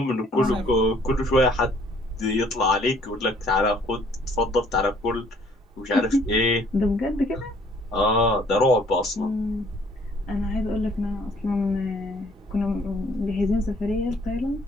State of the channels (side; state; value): both; normal; correlation 0.60